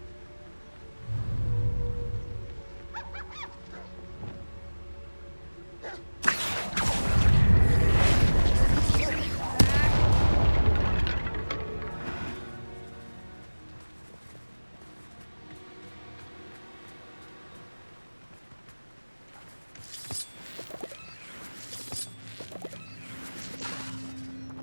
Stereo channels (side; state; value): both; inverted; correlation -1.00